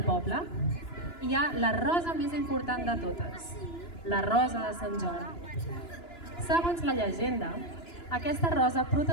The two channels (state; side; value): late; right; 2.9 ms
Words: poble hi ha la rosa més important de totes, la rosa de Sant Jordi. Segons la llegenda, aquesta rosa